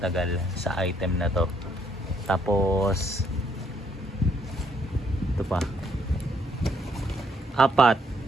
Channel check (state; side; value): normal; both; correlation 0.69